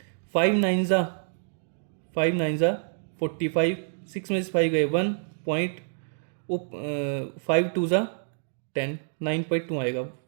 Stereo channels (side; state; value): left; silent; digital silence